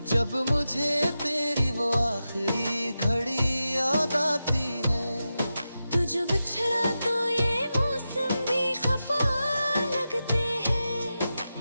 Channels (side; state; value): both; inverted; correlation -0.91